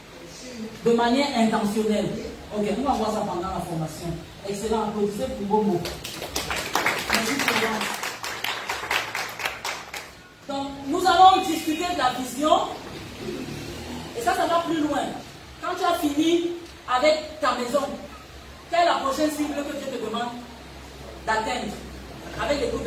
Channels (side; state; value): both; identical; correlation 1.00